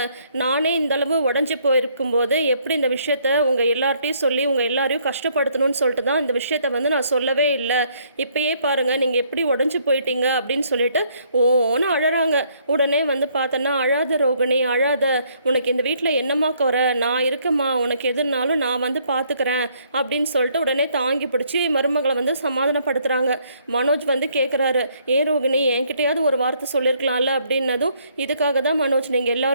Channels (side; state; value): both; inverted; correlation -0.67